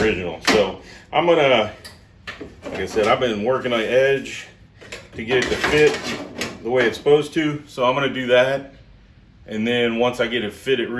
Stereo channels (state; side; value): identical; both; correlation 1.00